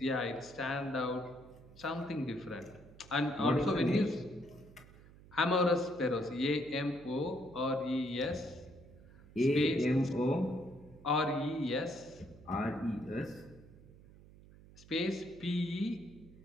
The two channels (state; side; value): noise; right; hum, 21 dB below the sound